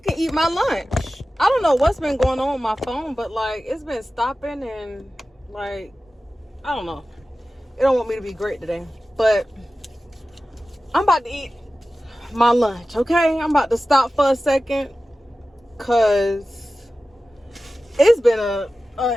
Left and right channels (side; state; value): both; normal; correlation 0.95